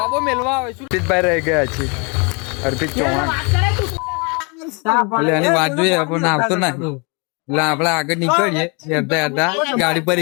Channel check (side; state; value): right; quieter; 32.2 dB